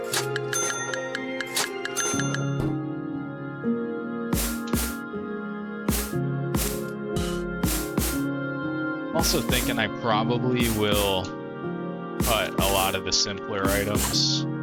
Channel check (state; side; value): identical; both; correlation 1.00